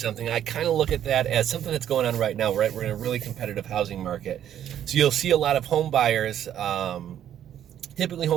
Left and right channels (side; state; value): left; quieter; 10.5 dB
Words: I kind of look at that as something that's going on right now, right? We're in a really competitive housing market. So you'll see a lot of home buyers, typically